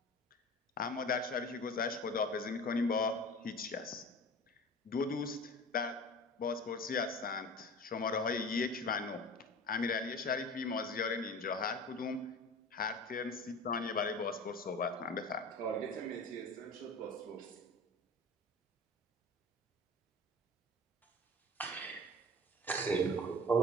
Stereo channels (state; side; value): normal; both; correlation 0.38